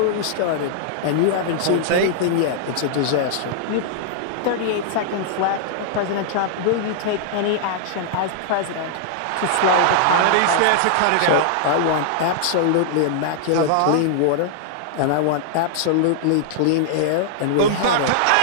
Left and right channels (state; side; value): different; both; correlation -0.01